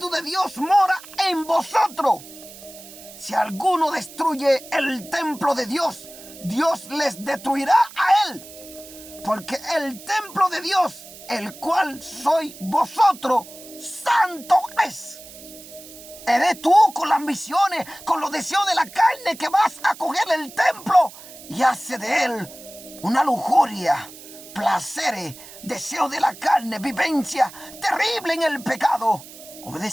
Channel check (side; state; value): right; noise; hiss, 17 dB below the sound